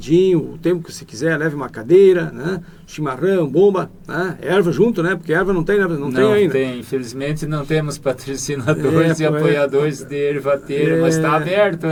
o tempo que você quiser, leve uma cadeira, né? Chimarrão, bomba, né? Erva junto, né? Porque erva não tem, né? Não tem ainda. Não tem, infelizmente não temos patrocinadores e apoiadores de ervateira, mas está aberto,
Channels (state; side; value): identical; both; correlation 1.00